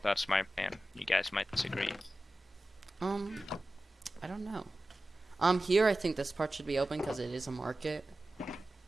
That's my plan. You guys might disagree. I don't know. Here I think this part should be open because it is a market.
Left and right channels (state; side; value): normal; both; correlation 0.95